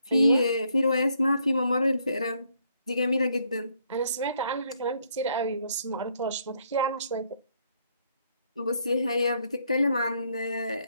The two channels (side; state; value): both; inverted; correlation -0.71